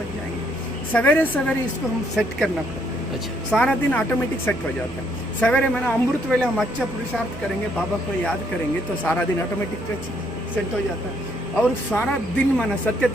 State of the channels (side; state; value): both; normal; correlation 0.70